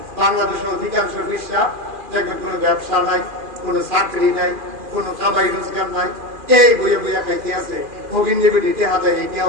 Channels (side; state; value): left; late; 2.4 ms